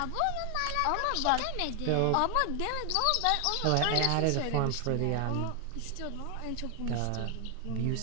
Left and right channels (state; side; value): different; both; correlation 0.00